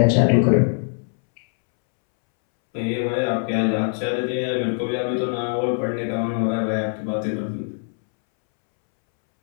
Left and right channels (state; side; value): silent; right; 64 dB below the other